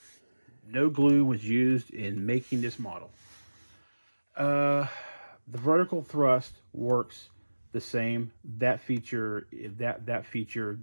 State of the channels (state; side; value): inverted; both; correlation -1.00